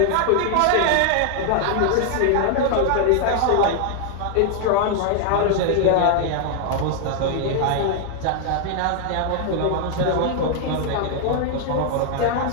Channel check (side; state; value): both; different; correlation 0.00